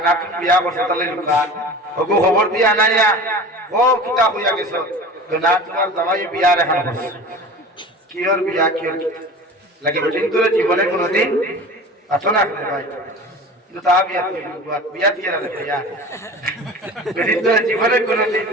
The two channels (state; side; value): normal; both; correlation 0.37